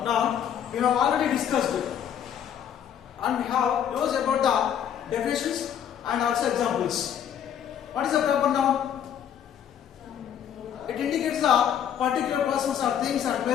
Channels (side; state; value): right; quieter; 9.3 dB